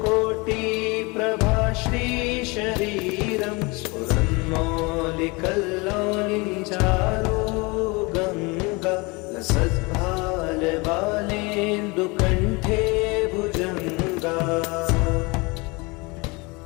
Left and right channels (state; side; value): quieter; right; 26.8 dB